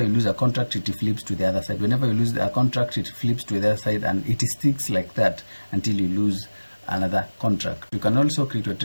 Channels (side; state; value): both; inverted; correlation -1.00